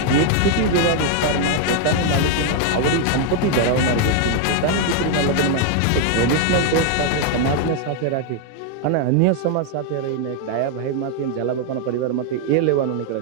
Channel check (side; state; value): both; different; correlation 0.00